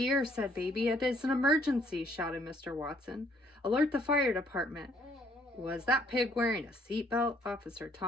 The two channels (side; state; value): both; normal; correlation 0.65